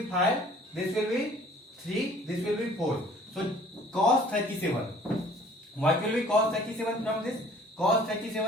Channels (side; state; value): both; normal; correlation 0.53